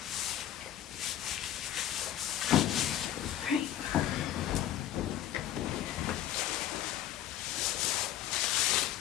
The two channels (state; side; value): quieter; right; 11.8 dB